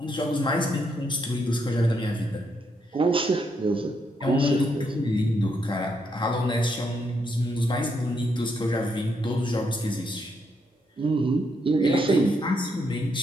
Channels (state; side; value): normal; both; correlation 0.77